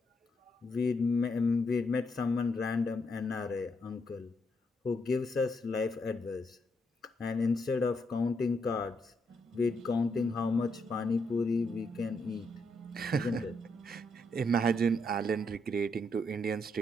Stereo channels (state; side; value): normal; both; correlation 0.77